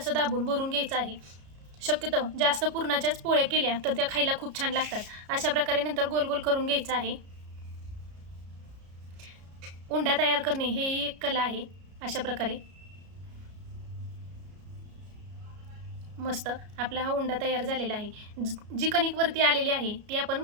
दाबून भरून घ्यायचं आहे. शक्यतो जास्त पुरणाच्याच पोळ्या केल्या तर त्या खायला खूप छान लागतात. अशा प्रकारे नंतर गोल गोल करून घ्यायचं आहे. उंडा तयार करणे हे एक कला आहे. अशा प्रकारे मस्त आपला हा उंडा तयार झालेला आहे. जी कणिक वरती आलेली आहे ती आपण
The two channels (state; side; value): late; left; 33 ms